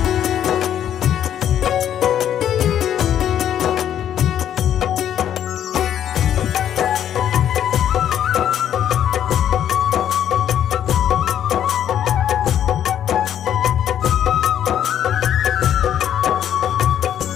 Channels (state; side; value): quieter; right; 10.2 dB